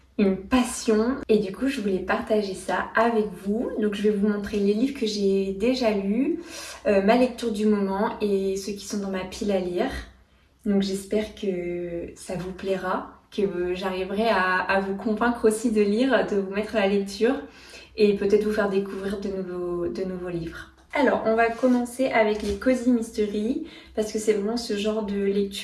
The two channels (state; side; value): identical; both; correlation 1.00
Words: une passion et du coup je voulais partager ça avec vous. Donc je vais vous montrer les livres que j'ai déjà lus, ma lecture du moment et ceux qui sont dans ma pile à lire. Donc j'espère que ça vous plaira, que j'arriverai à vous convaincre aussi de lire, de vous mettre à la lecture et peut-être vous faire découvrir de nouveaux livres. Alors, on va commencer avec les Cozy Mystery parce que c'est vraiment ce genre de